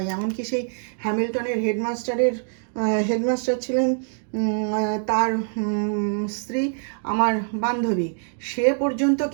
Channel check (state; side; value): silent; left; digital silence